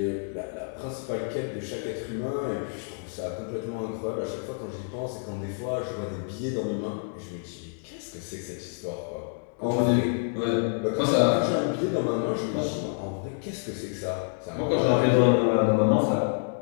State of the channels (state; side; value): silent; right; digital silence